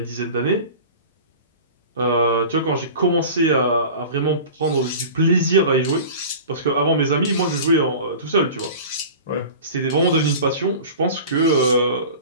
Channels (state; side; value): inverted; both; correlation -0.37